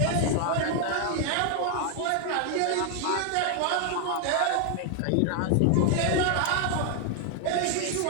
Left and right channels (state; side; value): different; both; correlation 0.00